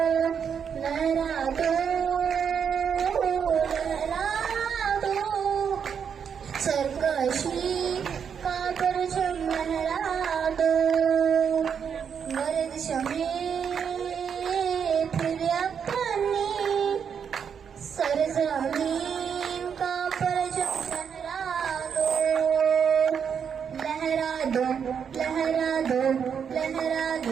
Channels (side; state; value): left; quieter; 7.3 dB